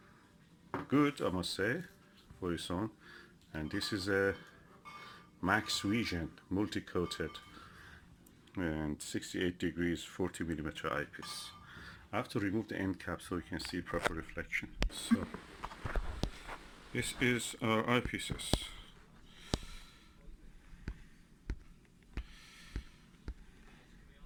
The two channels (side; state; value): both; identical; correlation 1.00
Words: Good, I must say, for its own. And this is a Maxvision multi-coated and 68 degrees 40mm eyepiece. I have to remove the end cap so you can see proper reflection. So this is our eyepieces.